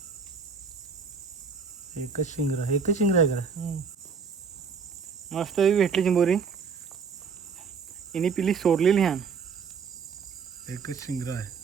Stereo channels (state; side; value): quieter; left; 5.6 dB